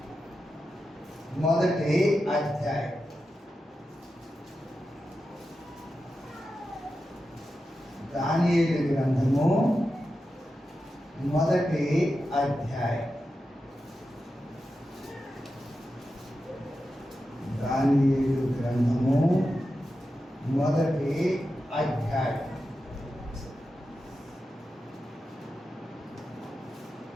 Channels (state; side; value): normal; both; correlation 0.90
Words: మొదటి అధ్యాయం. దానియేలు గ్రంథము మొదటి అధ్యాయం. దానియేలు గ్రంథము మొదటి అధ్యాయం.